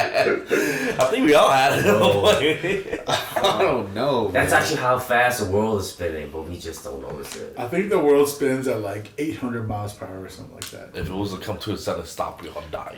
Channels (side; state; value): both; identical; correlation 1.00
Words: I think we all had it at one point. I don't know. That's man. actually how fast the world is spinning, but we just don't notice it. I think the world spins at like 800 miles per hour or something like that. If it was to come to a sudden stop, we all die.